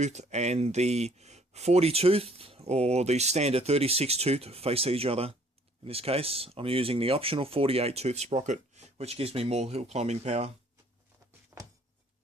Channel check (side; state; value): both; normal; correlation 0.59